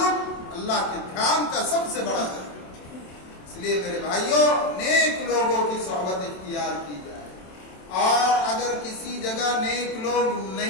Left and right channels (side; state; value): right; late; 27 ms